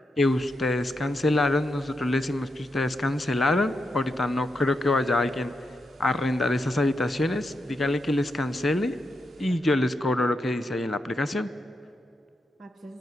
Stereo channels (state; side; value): normal; both; correlation 0.85